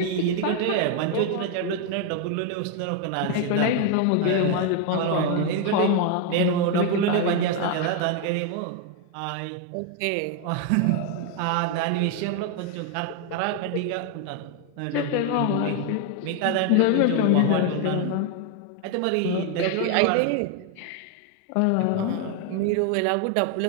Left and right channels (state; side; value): different; both; correlation 0.01